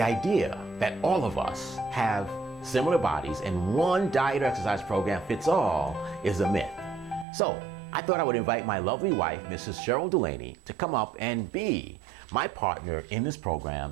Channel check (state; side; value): drops out; left; at 7.2 s